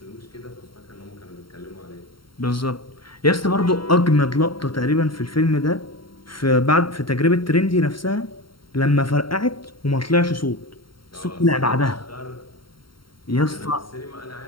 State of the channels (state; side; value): late; right; 0.73 ms